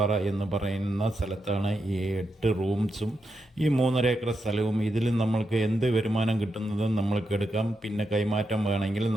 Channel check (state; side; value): normal; both; correlation 0.85